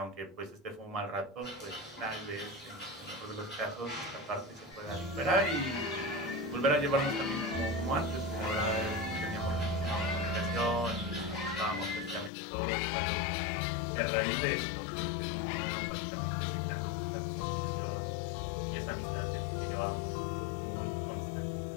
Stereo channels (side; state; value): right; drops out; at 12.3 s